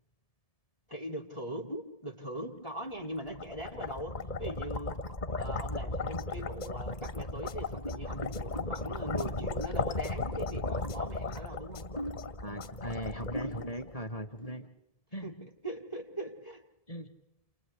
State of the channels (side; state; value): right; late; 1.7 ms